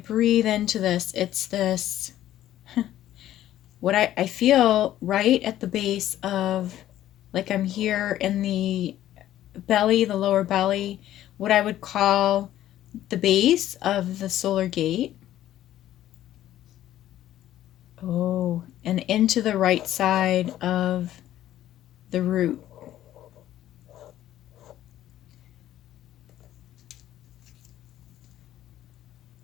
into this, it's this, what I feel right at the base of, like, I'm here in the belly, the lower belly, what I would call the base of the solar gate. Oh, and into the right side of the root.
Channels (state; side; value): quieter; right; 12.9 dB